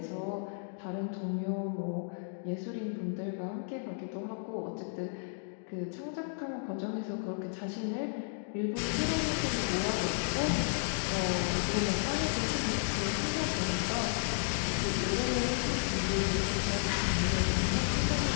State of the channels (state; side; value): silent; right; digital silence